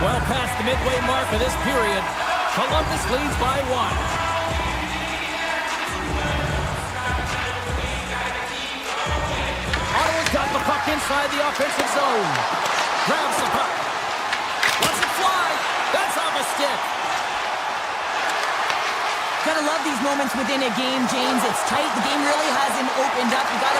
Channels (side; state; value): both; identical; correlation 1.00